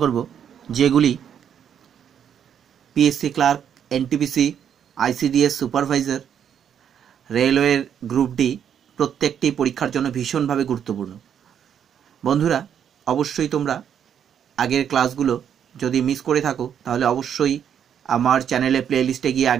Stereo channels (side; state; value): left; quieter; 8.7 dB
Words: করব, যেগুলি PSC clerk, NTPC, ICDS supervisor, রেলওয়ের গ্রুপ ডি প্রত্যেকটি পরীক্ষার জন্য ভীষণভাবে গুরুত্বপূর্ণ। বন্ধুরা, অবশ্যই তোমরা আগের ক্লাসগুলো যদি মিস করে থাকো তাহলে অবশ্যই আমার চ্যানেলে প্লেলিস্টে গিয়ে